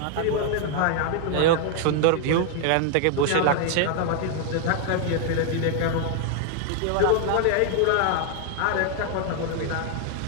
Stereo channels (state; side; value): different; both; correlation 0.00